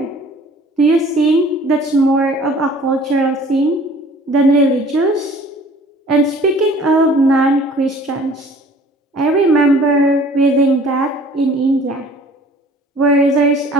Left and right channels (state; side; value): normal; both; correlation 0.51